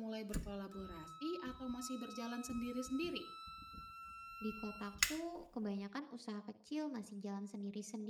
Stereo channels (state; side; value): identical; both; correlation 1.00